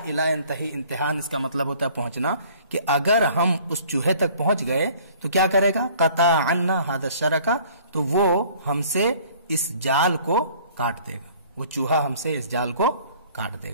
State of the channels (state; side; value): inverted; both; correlation -0.53